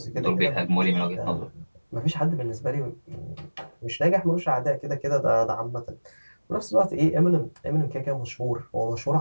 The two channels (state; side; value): inverted; both; correlation -1.00